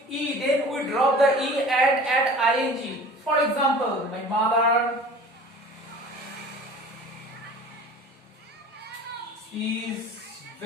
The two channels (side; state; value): both; normal; correlation 0.43